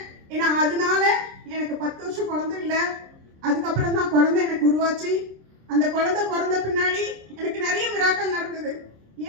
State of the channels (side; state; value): left; late; 26 ms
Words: ஏன்னா அதனால எனக்கு 10 வருஷம் குழந்தை இல்லை. அதுக்கப்புறம் தான் குழந்தை எனக்கு உருவாச்சு. அந்த குழந்தை பிறந்த பின்னாடி எனக்கு நிறைய மிராக்கள் நடந்தது.